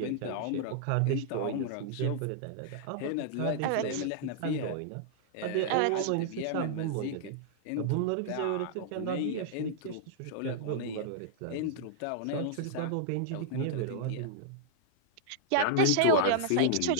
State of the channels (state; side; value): different; both; correlation -0.01